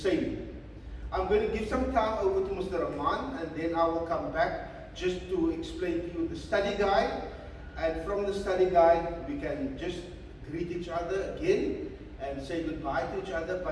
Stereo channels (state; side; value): identical; both; correlation 1.00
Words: I'm going to give some time over to Mr. Rahman, and then I will come back just to explain to you the study guide, and from the study guide we can just greet each other again and say goodbye to each other.